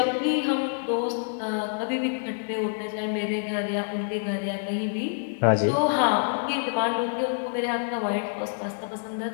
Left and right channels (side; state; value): right; silent; digital silence